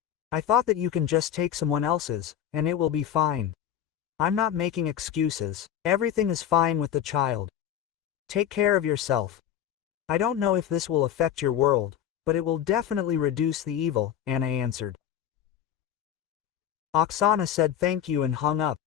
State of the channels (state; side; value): quieter; right; 10.2 dB